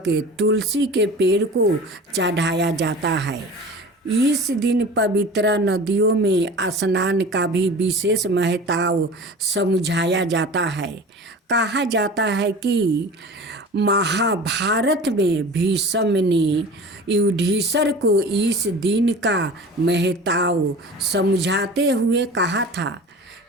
तुलसी के पेड़ को चढ़ाया जाता है। इस दिन पवित्र नदियों में स्नान का भी विशेष महत्व समझाया जाता है। कहा जाता है कि महाभारत में भीष्म ने युधिष्ठिर को इस दिन का महत्व समझाते हुए कहा था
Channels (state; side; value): normal; both; correlation 0.38